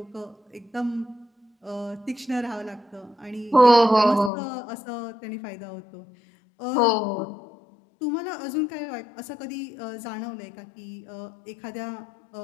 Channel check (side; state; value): right; drops out; at 4.3 s